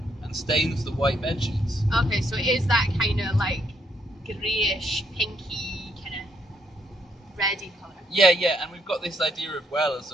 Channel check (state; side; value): normal; both; correlation 0.72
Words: and stains the white bed sheets. Okay, so it is that kind of like greyish, pinky, kind of reddy colour. Yeah, and we've got this idea of